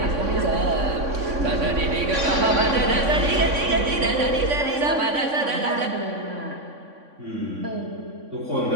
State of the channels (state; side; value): late; left; 3.6 ms